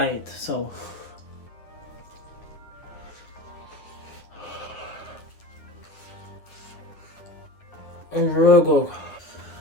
it. So really good.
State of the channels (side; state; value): right; late; 9.6 ms